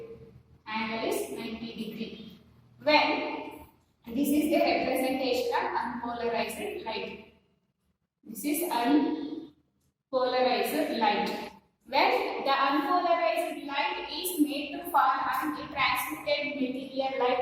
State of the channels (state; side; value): identical; both; correlation 1.00